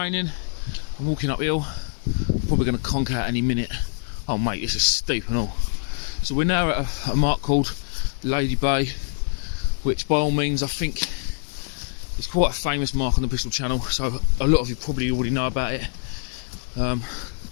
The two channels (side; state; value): right; silent; digital silence